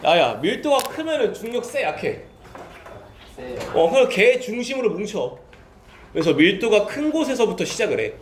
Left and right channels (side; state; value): both; identical; correlation 1.00